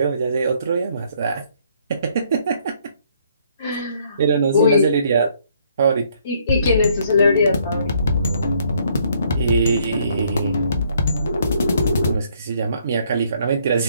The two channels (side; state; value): both; inverted; correlation -0.66